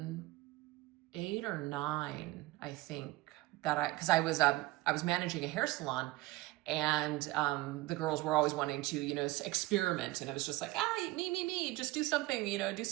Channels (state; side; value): quieter; left; 19.5 dB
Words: or 9, I think, because I was managing a hair salon. And the girls were always wanting to, experiment. And it was just like, me, just do something, do